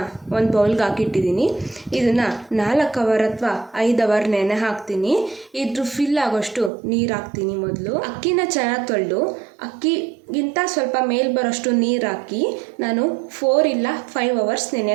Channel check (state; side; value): drops out; left; at 6.7 s